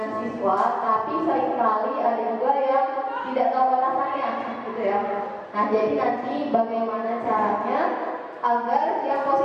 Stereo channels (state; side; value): identical; both; correlation 1.00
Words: siswa, tapi seringkali ada juga yang tidak tahu batasannya, gitu ya. Nah jadi nanti bagaimana caranya agar yang